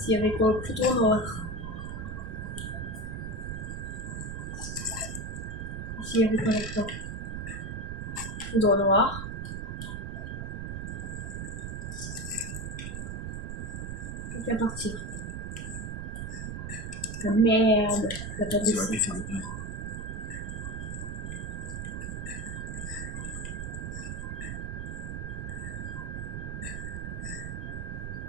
il y avait quoi? Plutôt noir. Ici il y avait quoi là-dedans? Plutôt noir. Plus qu'à partir. Ah, merde, t'as pas Tu aurais dessus. pu faire le plein.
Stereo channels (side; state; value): right; noise; rumble, 5 dB below the sound